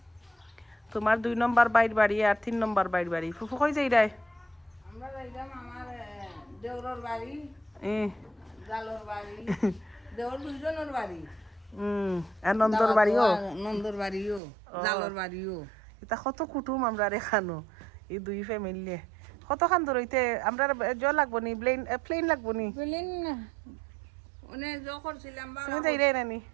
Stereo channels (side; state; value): left; drops out; at 14.4 s